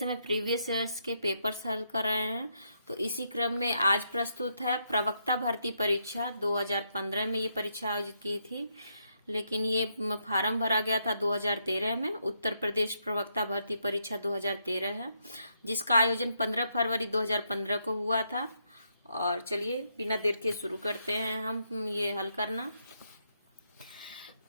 प्रीवियस ईयर्स के पेपर्स हल कर रहे हैं, तो इसी क्रम में आज प्रस्तुत है प्रवक्ता भर्ती परीक्षा। 2015 में ये परीक्षा आयोजित की थी, लेकिन ये फार्म भरा गया था 2013 में। उत्तर प्रदेश प्रवक्ता भर्ती परीक्षा 2013 है, जिसका आयोजन 15 फरवरी 2015 को हुआ था। और चलिए बिना देर के शुरू करते हैं हम ये हल करना।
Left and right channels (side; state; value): both; inverted; correlation -0.78